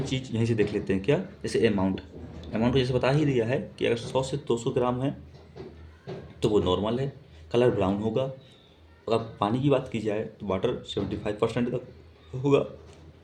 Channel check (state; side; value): identical; both; correlation 1.00